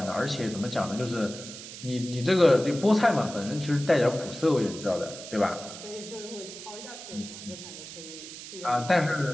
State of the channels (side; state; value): right; noise; hiss, 12 dB below the sound